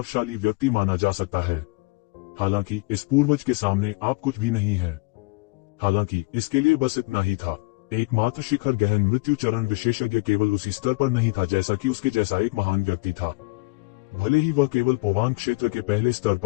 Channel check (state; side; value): quieter; right; 25.9 dB